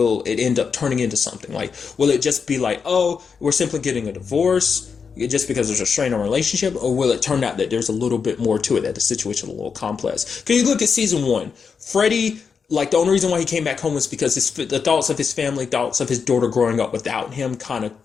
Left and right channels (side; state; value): right; quieter; 5.9 dB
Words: it end up turning into something? Will it just be oh, we're simply getting a divorce just because there's a strain on relationship, or will it turn out that there's a little bit more to it, that the situation is a little complex? Because you look at season 1, Freddy, the only reason why he came back home was because the thoughts of his family, thoughts of his daughter growing up without him, kind of